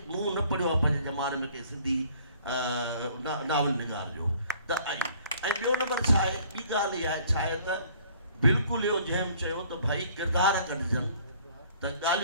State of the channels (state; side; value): inverted; both; correlation -0.57